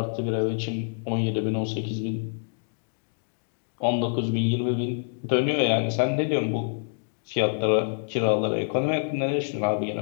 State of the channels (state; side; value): silent; right; digital silence